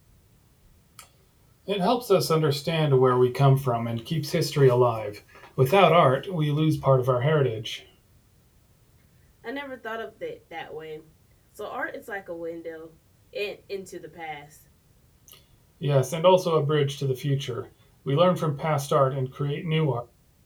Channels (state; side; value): identical; both; correlation 1.00